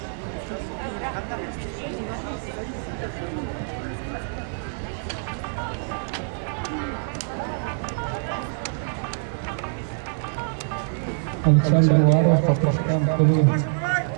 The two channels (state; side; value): silent; left; digital silence